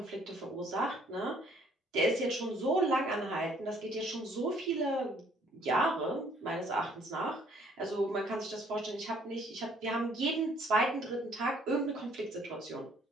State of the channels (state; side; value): normal; both; correlation 0.62